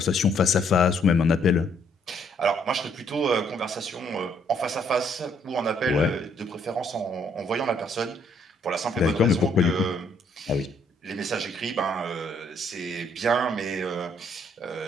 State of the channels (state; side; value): normal; both; correlation 0.67